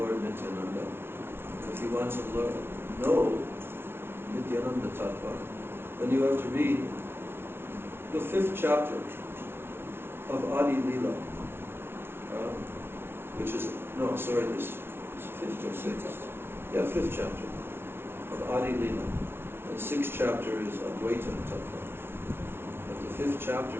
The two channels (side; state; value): left; late; 0.11 ms